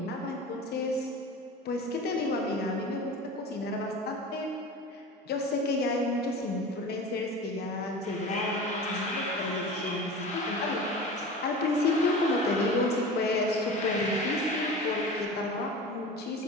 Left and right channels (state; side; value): normal; both; correlation 0.34